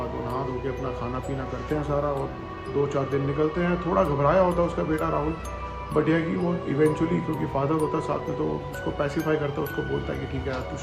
वो नहा धो के अपना खाना पीना करते हैं सारा, और 2-4 दिन निकलते हैं। थोड़ा घबराया होता है उसका बेटा राहुल, बट यह कि वो इवेंचुअली, क्योंकि फादर होता है साथ में, तो उसको पैसिफाई करता है, उसको बोलता है कि ठीक है यार तू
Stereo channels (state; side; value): identical; both; correlation 1.00